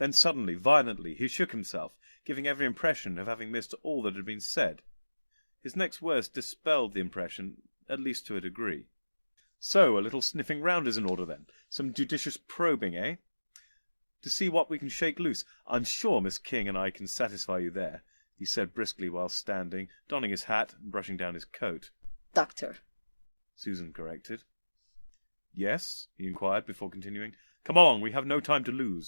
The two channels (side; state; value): both; inverted; correlation -1.00